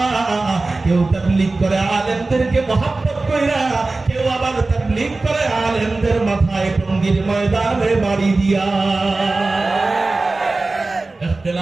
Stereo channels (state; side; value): quieter; left; 3.4 dB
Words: কেউ তাবলীগ করে আলেমদেরকে মহব্বত কইরা, কেউ আবার তাবলীগ করে আলেমদের মাথায় টঙ্গির ময়দানে বাড়ি দিয়া।